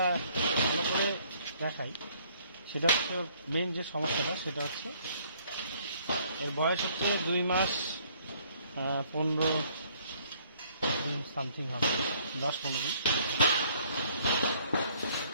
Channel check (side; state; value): both; inverted; correlation -0.62